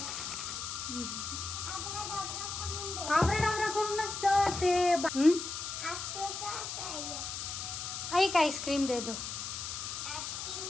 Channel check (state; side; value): noise; left; hiss, 5 dB below the sound